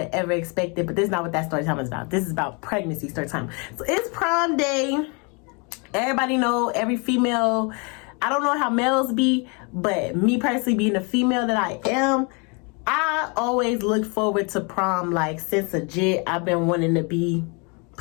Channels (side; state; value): right; quieter; 32.7 dB